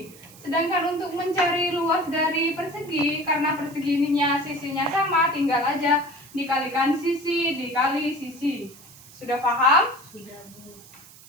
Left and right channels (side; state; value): right; noise; hiss, 22 dB below the sound